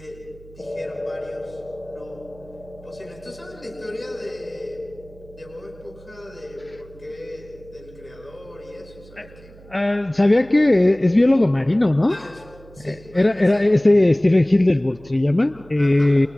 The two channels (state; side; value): noise; right; hum, 22 dB below the sound